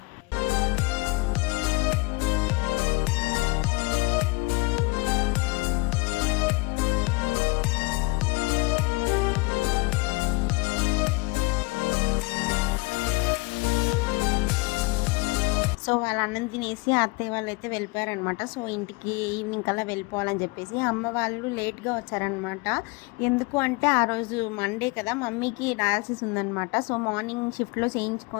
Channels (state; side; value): quieter; right; 25.5 dB